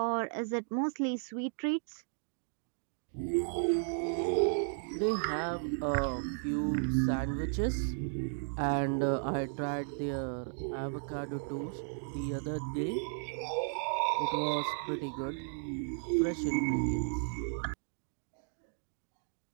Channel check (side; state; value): left; silent; digital silence